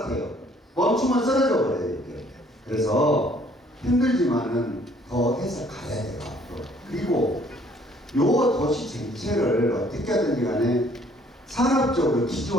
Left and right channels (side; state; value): both; normal; correlation 0.60